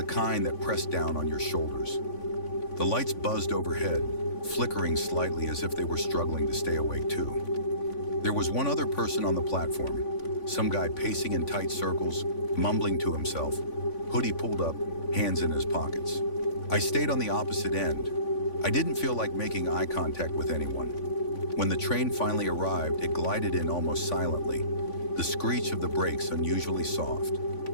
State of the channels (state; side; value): late; right; 3.5 ms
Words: kind that pressed down on your shoulders. The lights buzzed overhead, flickering slightly as if they were struggling to stay awake too. There was one other person on the platform, some guy pacing in tight circles, mumbling to himself, hoodie pulled up, hands in his pockets. I stayed on the opposite end. I didn't feel like making eye contact with anyone. When the train finally arrived, it glided in almost silently, the screech of the brakes unusually soft,